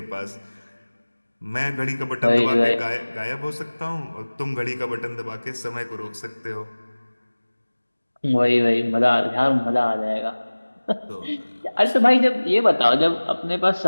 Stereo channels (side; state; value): both; inverted; correlation -1.00